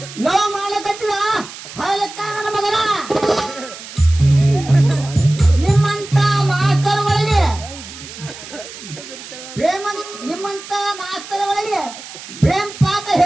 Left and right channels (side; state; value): right; noise; hiss, 14 dB below the sound